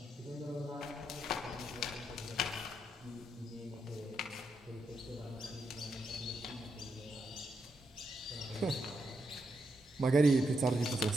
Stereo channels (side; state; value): both; normal; correlation 0.82